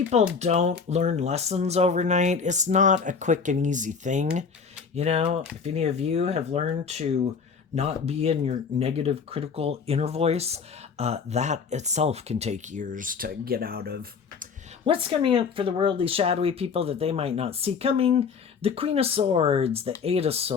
don't learn lessons overnight. It's not a quick and easy thing. If any of you have learned to not be in your negative, critical inner voice, that itself can take years to get out of. What's coming up for the worldly, shadowy people that they might not see coming? The Queen of Swords, the Eight of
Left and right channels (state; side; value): quieter; right; 5.7 dB